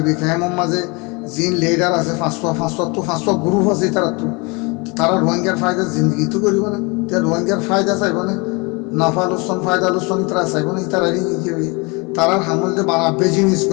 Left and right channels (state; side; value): quieter; right; 28.6 dB